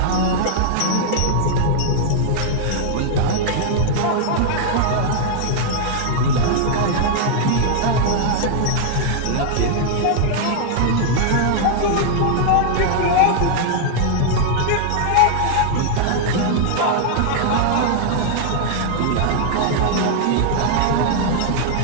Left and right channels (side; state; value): both; different; correlation -0.01